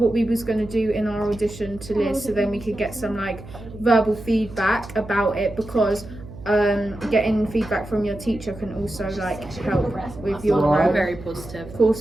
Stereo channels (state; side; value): noise; right; hum, 15 dB below the sound